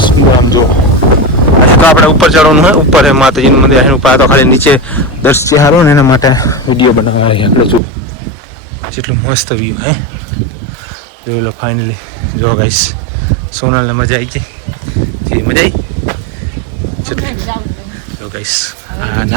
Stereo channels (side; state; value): left; drops out; at 7.8 s